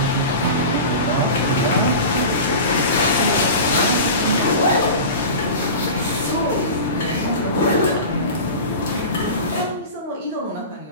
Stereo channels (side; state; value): both; inverted; correlation -0.32